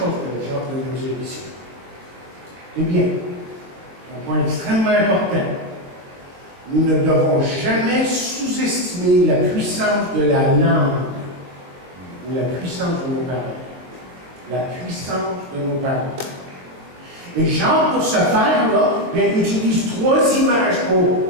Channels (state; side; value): late; left; 22 ms